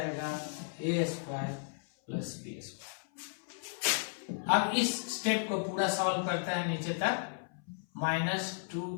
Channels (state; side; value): silent; right; 55 dB below the other